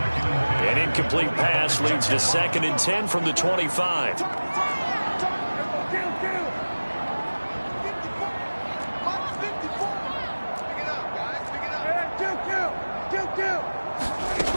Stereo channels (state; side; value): inverted; both; correlation -1.00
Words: An incomplete pass leads to 2nd and 10 from the 25.